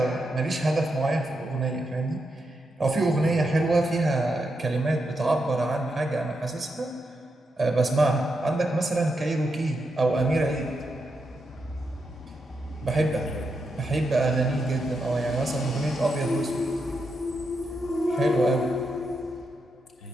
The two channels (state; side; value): normal; both; correlation 0.84